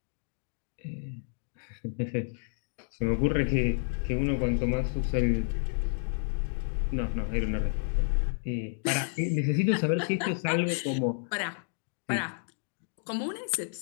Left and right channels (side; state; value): right; silent; digital silence